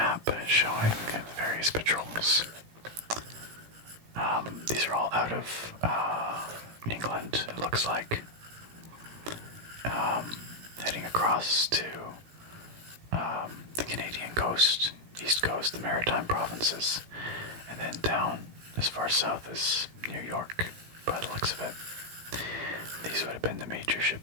showing the various patrols. These are all out of England, it looks like. Heading across to the Canadian coast, east coast, the maritime provinces, and then down as far south as New York, by the looks of it. These would have been the major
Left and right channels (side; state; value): left; late; 17 ms